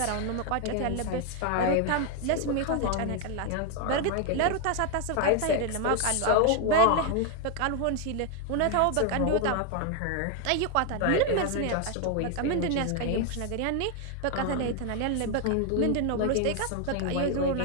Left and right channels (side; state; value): both; different; correlation 0.01